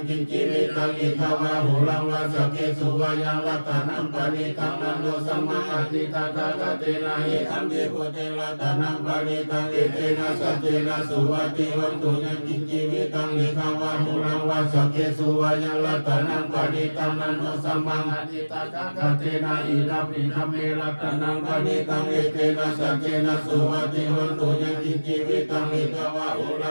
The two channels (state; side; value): inverted; both; correlation -1.00